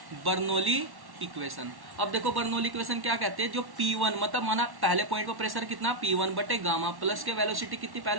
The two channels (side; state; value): left; late; 1.1 ms